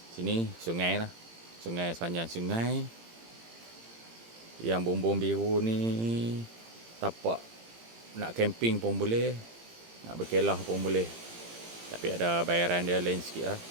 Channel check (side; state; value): left; late; 18 ms